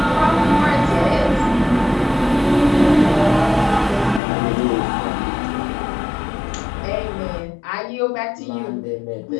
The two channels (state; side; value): drops out; right; at 4.2 s